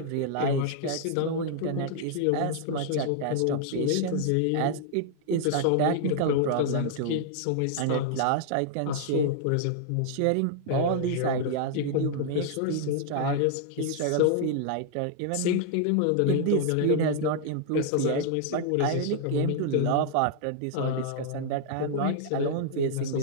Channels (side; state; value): both; different; correlation -0.01